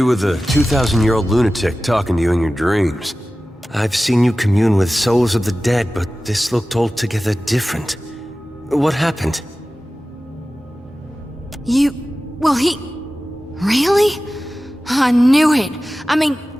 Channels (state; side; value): normal; both; correlation 0.96